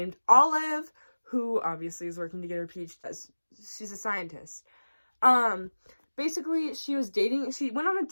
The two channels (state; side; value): inverted; both; correlation -1.00